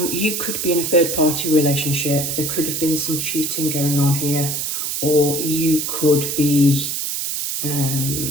You could be in a third-party relationship. There could have been some cheating going on here, or you could be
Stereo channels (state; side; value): noise; right; hiss, 2 dB below the sound